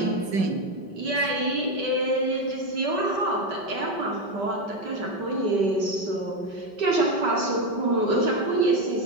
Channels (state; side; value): late; left; 5.2 ms